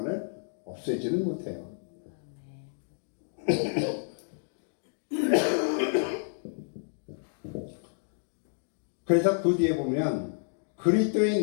없애지는 못해요. 그래서 그 뒤에 보면 그리스도의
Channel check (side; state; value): right; silent; digital silence